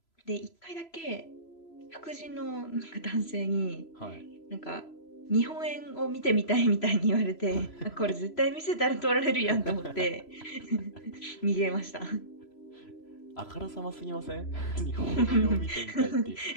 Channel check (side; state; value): right; late; 3.0 ms